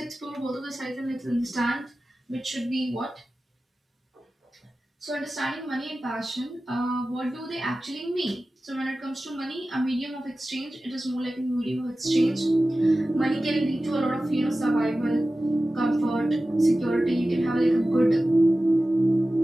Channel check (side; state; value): both; normal; correlation 0.95